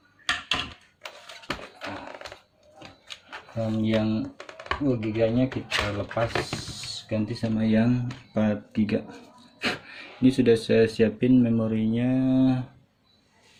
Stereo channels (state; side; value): identical; both; correlation 1.00